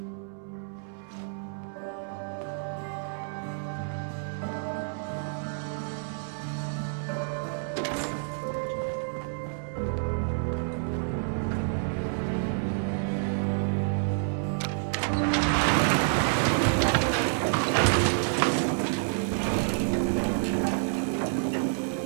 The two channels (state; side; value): silent; left; 59 dB below the other